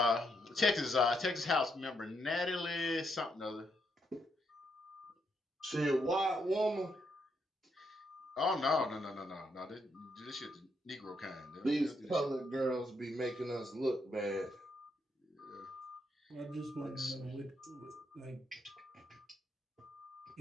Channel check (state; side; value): normal; both; correlation 0.78